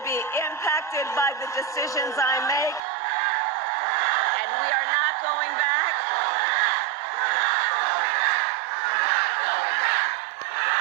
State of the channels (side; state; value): left; drops out; at 2.8 s